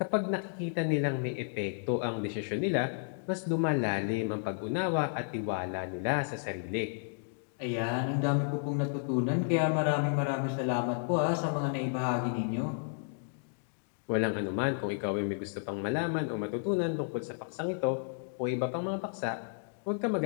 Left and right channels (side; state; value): right; silent; digital silence